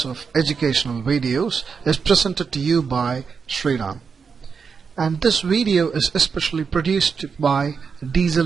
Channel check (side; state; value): left; quieter; 5.8 dB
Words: of educational videos is presented to you by Sriram. And this video is especially produced by